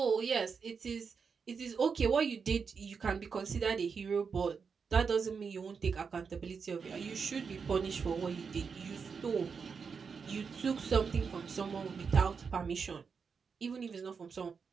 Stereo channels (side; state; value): left; quieter; 5.7 dB